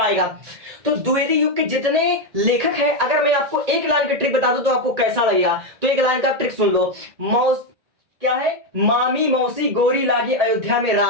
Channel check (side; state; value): left; late; 1.8 ms